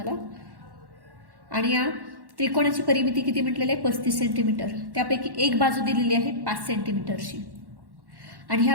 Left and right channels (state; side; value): late; left; 1.1 ms